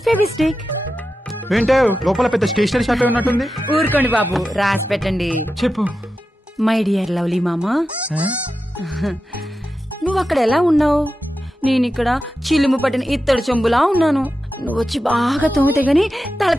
ఫెవిస్టిక్. ఏంటో లోపల పెద్ద స్టేషనరీ షాప్ ఉన్నట్టుంది. ఊరుకోండి బాబు, రాసి పెట్టండి. చెప్పు. మై డియర్ లవ్లీ మామా, నువ్వు అక్కడ ఎలా ఉన్నావు? నేను ఇక్కడ చిలుము పట్టిన ఇత్తడి చెంబులా ఉన్నాను. నువ్వు వచ్చి బాగా తోమితే గాని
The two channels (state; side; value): normal; both; correlation 0.91